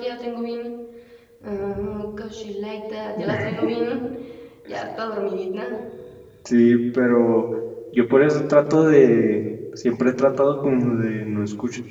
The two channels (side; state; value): both; identical; correlation 1.00